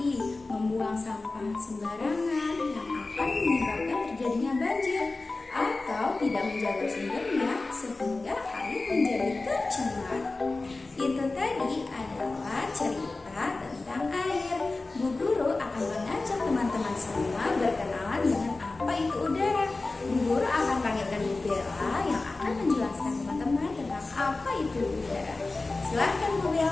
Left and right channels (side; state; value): right; quieter; 3.4 dB